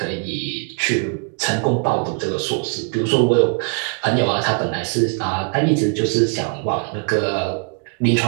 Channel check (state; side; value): quieter; left; 39.9 dB